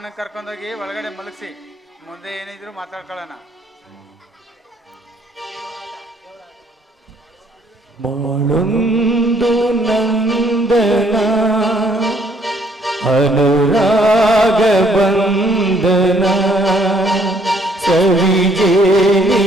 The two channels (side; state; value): both; normal; correlation 0.65